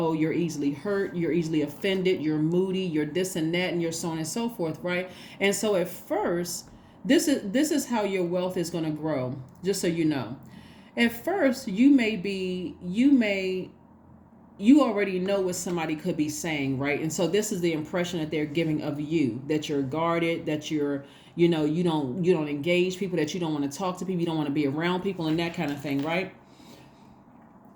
you're easily hurt, you're easily offended, you're moody, you're this and that, and you're so on and so forth, right? And so at first, this is how your wealth is going to grow, just so you know. At first, you already know what somebody could be saying, right? And so this is the impression that they're giving of you, that you're guarded, that you're, you don't engage people, that you don't want to talk to people, you don't want to be around people and that kind of thing, right?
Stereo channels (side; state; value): both; identical; correlation 1.00